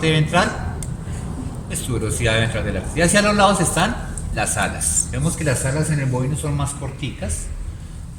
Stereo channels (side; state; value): both; identical; correlation 1.00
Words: ventral, es tuberosidad ventral del Atlas. Y hacia los lados están las alas. Vemos que las alas en el bovino son más corticas.